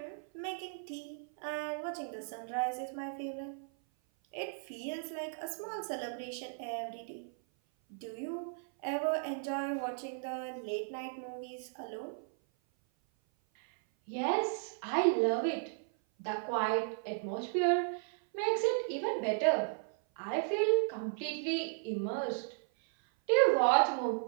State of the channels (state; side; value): silent; left; 54 dB below the other